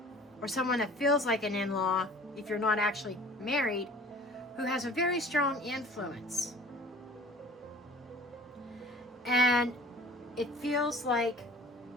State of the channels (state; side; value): normal; both; correlation 0.47